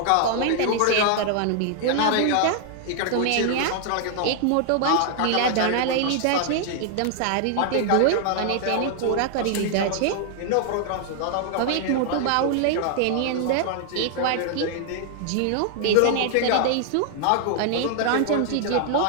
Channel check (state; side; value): different; both; correlation 0.00